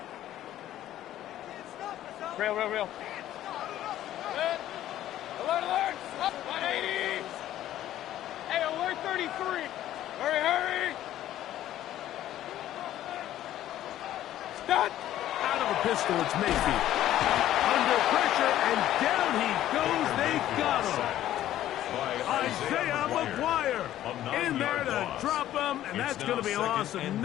Real. Alert. Up. 180. Hey, alert 33. Hurry. Stop. Out of a pistol, it's Mayfield. Under pressure, and down he goes. They got him. Isaiah McGuire in there to drop him, and that's going to be a loss of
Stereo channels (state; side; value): quieter; right; 12.9 dB